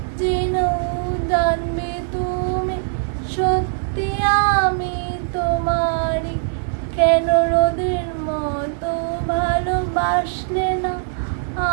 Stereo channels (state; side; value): silent; left; digital silence